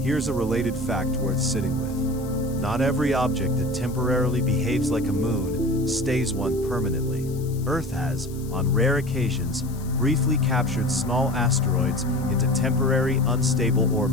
Here's a related fact worth sitting with. Not every object that temporarily behaves like a moon stays one permanently. Earth has, on rare occasions, briefly captured small asteroids into temporary unstable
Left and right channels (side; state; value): left; noise; hiss, 20 dB below the sound